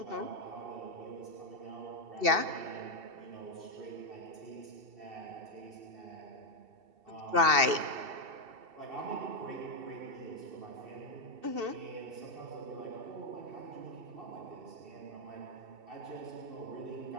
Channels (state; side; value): late; left; 2.7 ms